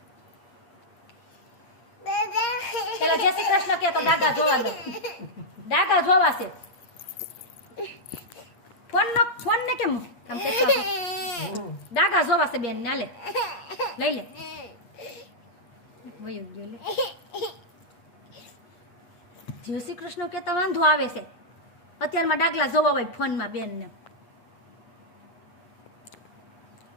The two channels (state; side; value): late; right; 8.5 ms